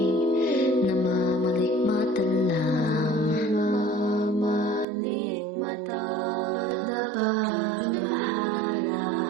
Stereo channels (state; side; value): drops out; left; at 4.9 s